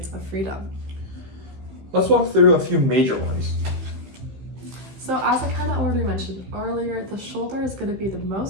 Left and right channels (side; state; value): left; late; 15 ms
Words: of freedom. Let's walk through a few major ones. So as I kind of already mentioned earlier, the shoulder is going to be the